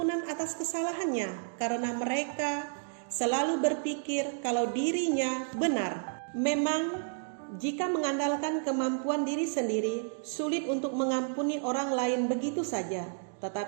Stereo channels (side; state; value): left; silent; digital silence